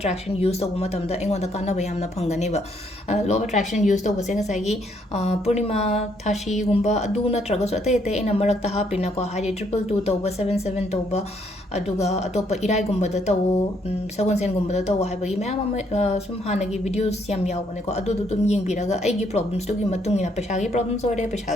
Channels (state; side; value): normal; both; correlation 0.70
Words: ꯌꯨꯁ ꯇꯧꯕ ꯃꯇꯝꯗ ꯑꯩꯉꯣꯟꯗ ꯀꯥꯟꯅꯕ ꯌꯥꯝꯅ ꯐꯪꯒꯅꯦꯕ ꯂꯣ ꯑꯣꯐ ꯑꯦꯇ꯭ꯔꯦꯛꯁꯟ ꯌꯨꯁ ꯇꯧꯕꯁꯦ ꯉꯁꯥꯏꯒꯤ ꯄꯨꯔꯅꯤꯃꯥ ꯊꯥꯁꯤꯒꯨꯝꯕ ꯑꯗꯨ ꯅꯠꯇ꯭ꯔꯒꯁꯨ ꯑꯇꯩ ꯑꯩꯅ ꯃꯔꯛꯇ ꯍꯥꯞꯄꯤꯅꯀꯣ ꯍꯥꯏꯗꯤ 222 ꯇꯧꯕ 77 ꯇꯧꯕ ꯑꯗꯨꯒ ꯑꯇꯣꯞꯄ ꯏꯔꯥꯏꯒꯨꯝꯕꯗ ꯇꯧꯋꯣ ꯁꯒꯣꯜꯁꯦꯟꯒꯨꯝꯕꯗ ꯇꯧꯋꯣ ꯍꯥꯏꯕꯒꯤ ꯃꯌꯥꯝ ꯑꯃ ꯁꯨꯝ ꯍꯥꯟꯅꯒꯤ ꯚꯤꯗꯤꯑꯣꯁ ꯌꯥꯝ ꯌꯥꯎꯕꯅꯦꯀꯣ ꯑꯗꯨꯗꯣ ꯑꯗꯨꯝ ꯌꯦꯡꯕꯤꯔꯒ ꯑꯩꯒꯤ ꯄ꯭ꯔꯣꯕ꯭ꯂꯦꯝꯁꯇꯨꯒꯤ ꯃꯇꯨꯡ ꯏꯟꯅ ꯄꯩꯁꯥꯒꯤ ꯄ꯭ꯔꯣꯕ꯭ꯂꯦꯝꯁ ꯑꯣꯏꯔꯦ